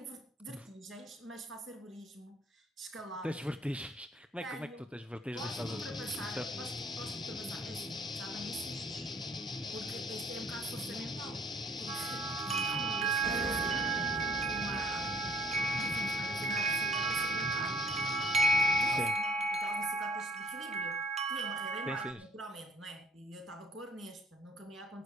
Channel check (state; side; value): normal; both; correlation 0.57